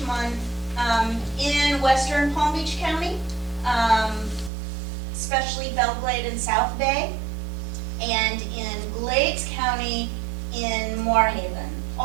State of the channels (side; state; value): left; drops out; at 4.5 s